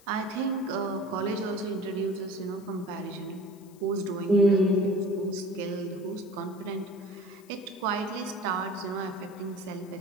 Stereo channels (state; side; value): noise; left; hiss, 26 dB below the sound